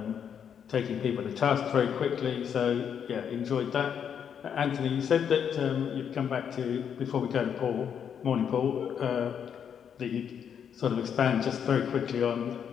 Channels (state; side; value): quieter; right; 8.0 dB